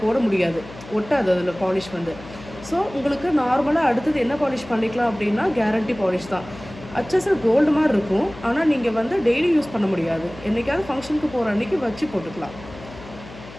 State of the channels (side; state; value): left; noise; hum, 17 dB below the sound